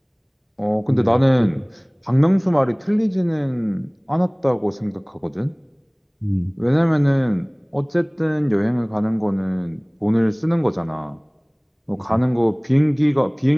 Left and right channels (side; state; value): both; identical; correlation 1.00